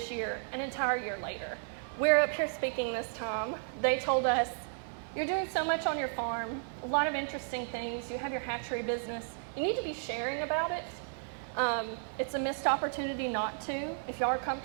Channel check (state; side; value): silent; left; 55 dB below the other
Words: year, an entire year later. We're up here speaking this time. They told us, you're doing so much on your farm, a lot of interesting things. You have your hatchery business. You need to be sharing about it. It's a missed opportunity not to. If y'all are